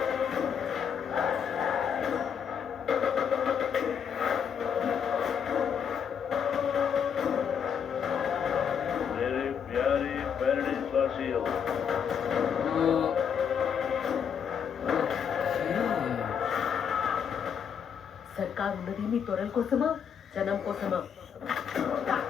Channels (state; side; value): quieter; right; 7.5 dB